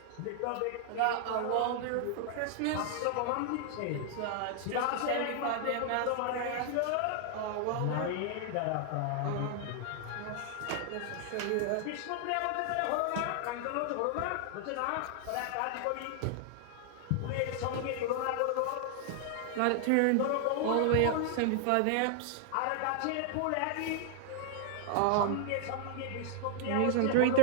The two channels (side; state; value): both; different; correlation 0.00